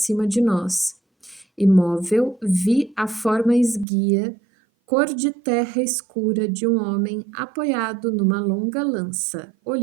de nós. Imóvel, vi a forma esguia, cor de terra escura de um homem apoiado numa longa lança,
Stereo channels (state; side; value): drops out; left; at 3.9 s